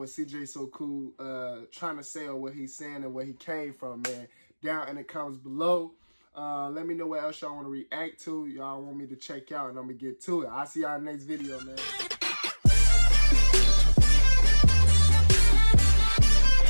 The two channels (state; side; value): inverted; both; correlation -1.00